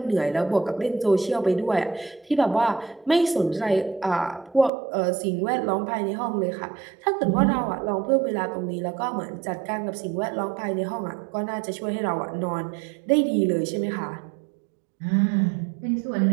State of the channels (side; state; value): left; drops out; at 4.7 s